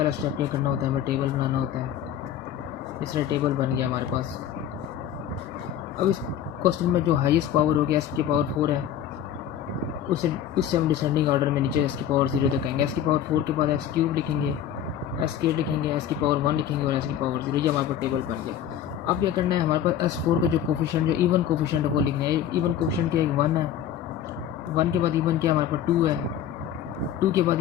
स्टेप क्या करना होता है, हमें टेबल बनाना होता है। इस तरह टेबल बन गया हमारे पास। अब इस क्वेश्चन में जो हाईएस्ट पावर हो गया एस की पावर 4 है, उससे हम डिसेंडिंग ऑर्डर में नीचे एस की पावर 0 तक कहेंगे। एस की पावर 4 के बाद एक्स क्यूब लिखेंगे, एस के लिखेंगे, एस की पावर 1 लिखेंगे और एस की पावर 0। ये हमारे पास टेबल बन गया। अब क्या करना है, हमारे पास S4 का जो कोफिशिएंट जो इवन कोफिशिएंट है वो लिखना है। इवन कोफिशिएंट क्या है, 1 है, 1 के बाद इवन क्या हमारे पास 2 है, 2 के बाद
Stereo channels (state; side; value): quieter; right; 10.1 dB